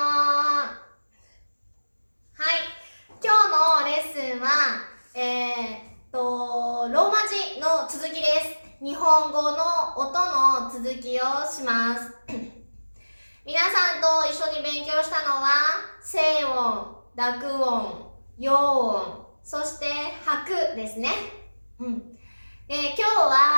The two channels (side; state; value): both; inverted; correlation -1.00